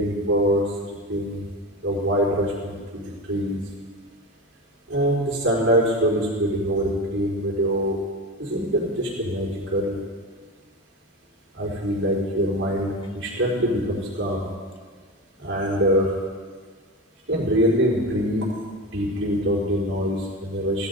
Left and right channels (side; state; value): both; normal; correlation 0.25